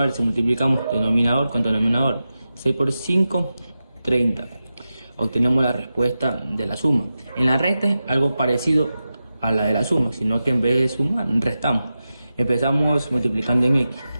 se multiplicamos denominador con denominador. 6 por 5, 30. Obtenemos la respuesta de la suma. En la resta es algo parecido a la de la suma, sino que en vez de sumar, restamos. Empezamos multiplicando en x.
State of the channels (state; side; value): inverted; both; correlation -0.92